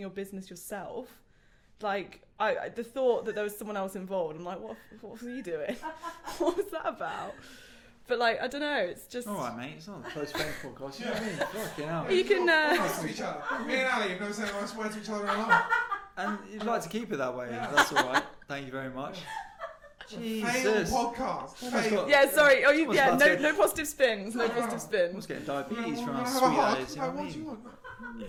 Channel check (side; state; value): both; identical; correlation 1.00